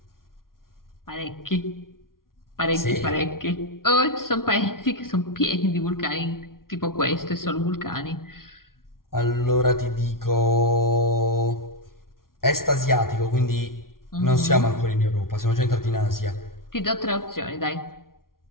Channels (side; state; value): right; late; 0.92 ms